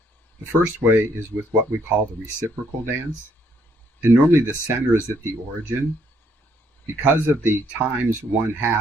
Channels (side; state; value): both; normal; correlation 0.70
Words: The first way is with what we call the reciprocal dance, and normally the center is at the origin. Because of the times